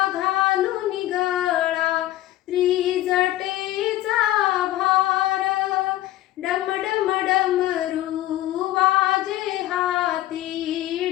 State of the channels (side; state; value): right; quieter; 15.1 dB